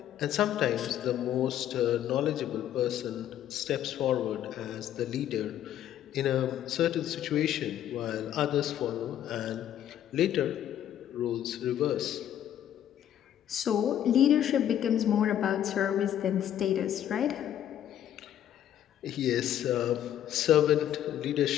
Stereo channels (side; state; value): right; quieter; 11.0 dB